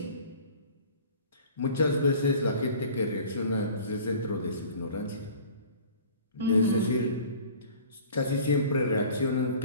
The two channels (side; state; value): both; inverted; correlation -0.45